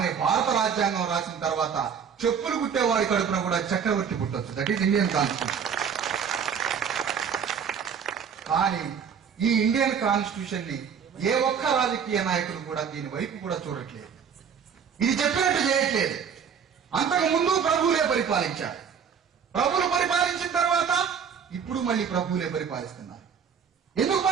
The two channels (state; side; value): quieter; left; 7.1 dB